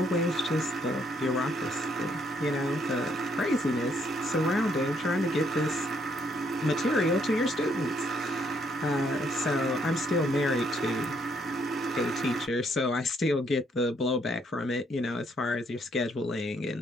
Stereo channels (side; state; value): both; normal; correlation 0.70